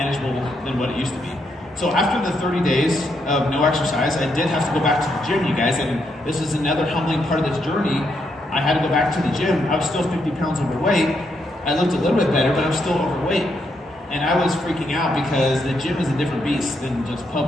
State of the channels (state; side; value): normal; both; correlation 0.78